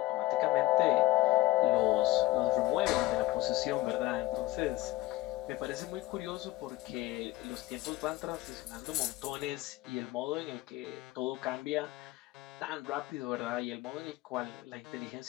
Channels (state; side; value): quieter; right; 17.9 dB